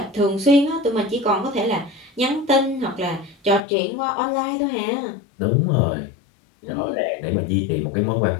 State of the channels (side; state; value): right; drops out; at 3.6 s